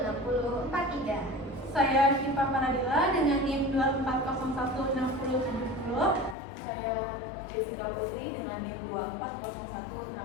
Saya Syifa Panadila dengan NIM 24016070. Saya Jessica Putri dengan NIM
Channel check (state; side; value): drops out; right; at 6.4 s